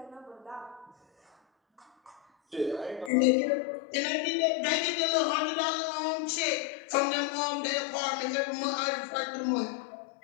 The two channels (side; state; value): right; drops out; at 3.1 s